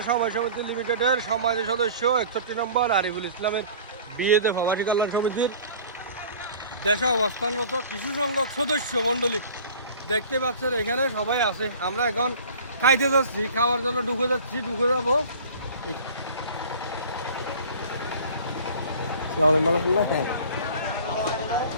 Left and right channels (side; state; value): both; inverted; correlation -0.44